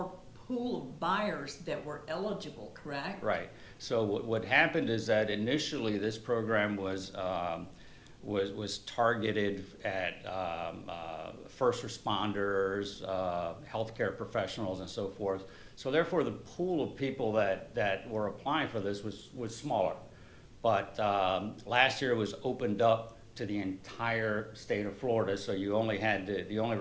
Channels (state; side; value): identical; both; correlation 1.00